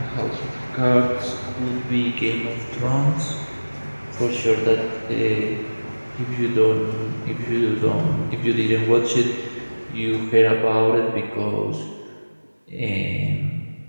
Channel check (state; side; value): inverted; both; correlation -1.00